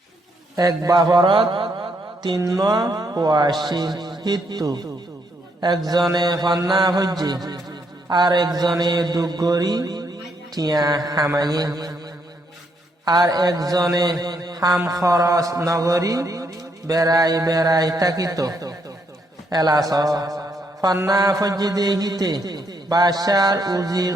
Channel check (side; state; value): both; normal; correlation 0.74